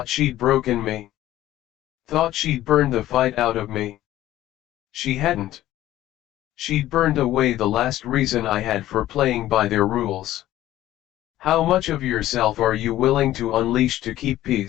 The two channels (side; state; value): right; quieter; 14.3 dB